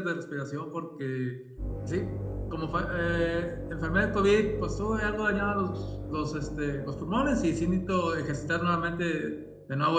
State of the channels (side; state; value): both; identical; correlation 1.00